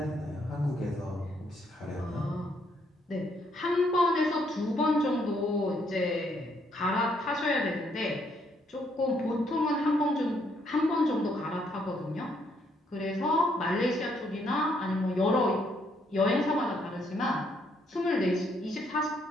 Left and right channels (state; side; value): normal; both; correlation 0.71